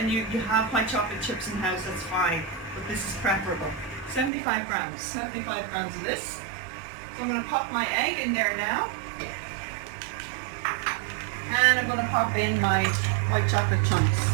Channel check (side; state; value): left; drops out; at 4.3 s